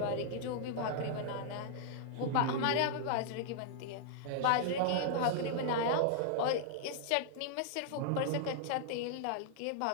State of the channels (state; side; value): different; both; correlation -0.01